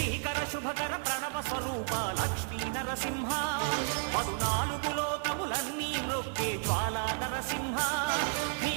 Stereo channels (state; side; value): silent; left; 56 dB below the other